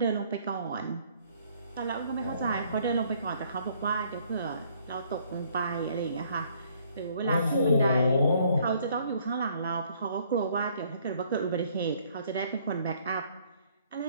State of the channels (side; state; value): both; inverted; correlation -0.64